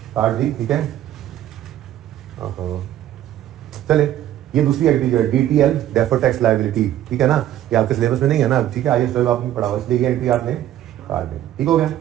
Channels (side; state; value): left; quieter; 12.4 dB